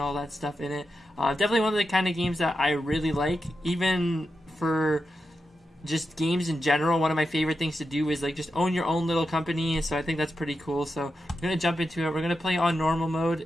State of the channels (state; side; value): normal; both; correlation 0.89